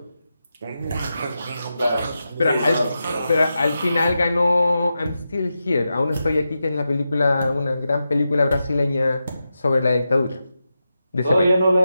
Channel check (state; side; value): inverted; both; correlation -0.89